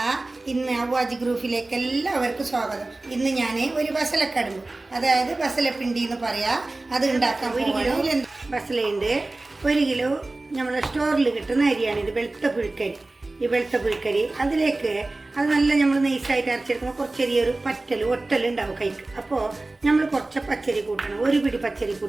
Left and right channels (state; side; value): quieter; left; 3.0 dB